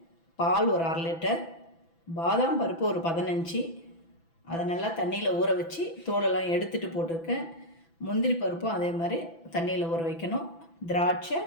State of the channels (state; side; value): late; right; 6.0 ms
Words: பால் ஒரு 1/2 லிட்டர், பாதாம் பருப்பு ஒரு 15, அதை நல்லா தண்ணியில் ஊற வச்சு தோலெல்லாம் எடுத்துகிட்டு போட்டிருக்கேன். முந்திரி பருப்பும் அதே மாதிரி தண்ணியில் ஊற வைக்கணும். திராட்சை,